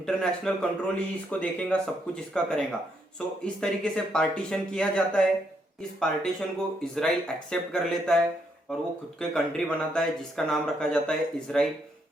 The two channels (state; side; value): normal; both; correlation 0.76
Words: कंट्रोल ही इसको देखेगा, सब कुछ इसका करेगा। सो इस तरीके से पार्टीशन किया जाता है। इस पार्टीशन को इसराइल एक्सेप्ट कर लेता है और वो खुद के कंट्री बनाता है जिसका नाम रखा जाता है इसराइल।